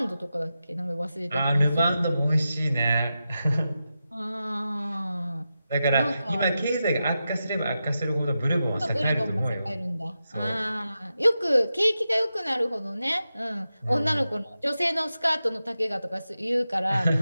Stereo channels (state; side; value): inverted; both; correlation -0.90